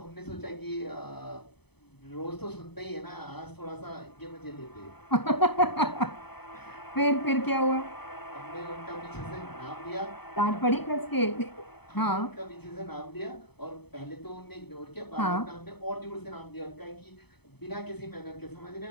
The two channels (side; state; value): right; late; 0.98 ms